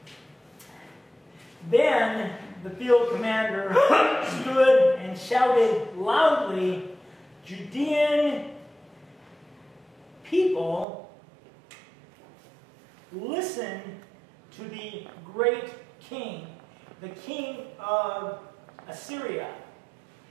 Then the field commander stood and shouted loudly, "Judean people, listen to the great king, the king of Assyria.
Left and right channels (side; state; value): left; drops out; at 10.9 s